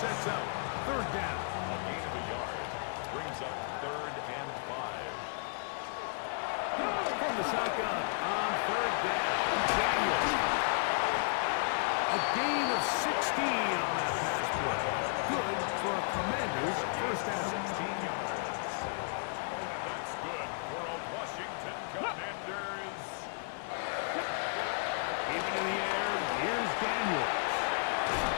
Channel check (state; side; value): silent; right; digital silence